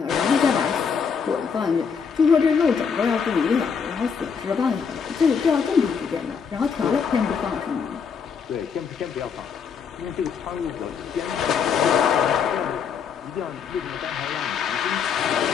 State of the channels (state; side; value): quieter; right; 6.4 dB